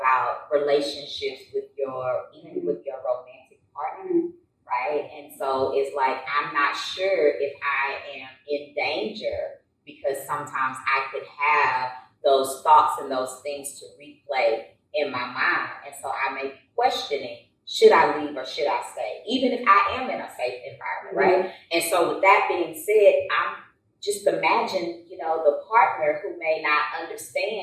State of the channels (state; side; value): identical; both; correlation 1.00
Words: relationships even with your romantic partner, right? And so it's like, I'm not sure if I am in danger because sometimes I could have those thoughts and those things to replay in my mind. And so I may be questioning, should I leave or should I stay? Even if I am in a safe environment, right? And so with that being said, I'm just imagine, the partner who may not